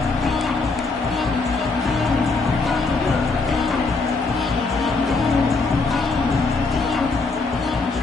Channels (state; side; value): quieter; right; 3.9 dB